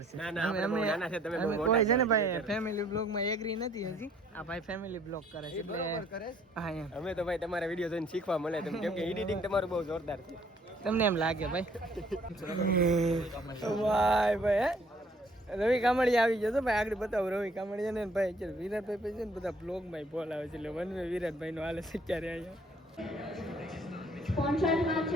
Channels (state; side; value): normal; both; correlation 0.61